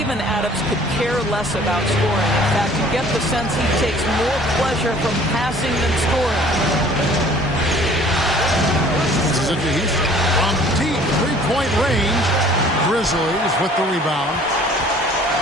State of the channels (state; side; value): normal; both; correlation 0.52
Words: Adams could care less about scoring. In fact, you get the sense he takes more pleasure from passing than scoring. This is it to Houston. From deep three-point range, Grizzlies with the rebound.